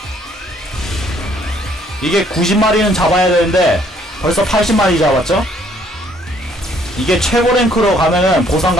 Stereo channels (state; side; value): normal; both; correlation 0.64